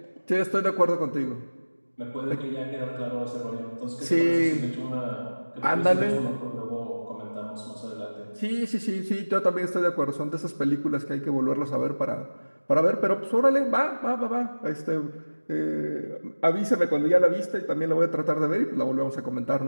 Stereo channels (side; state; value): both; inverted; correlation -1.00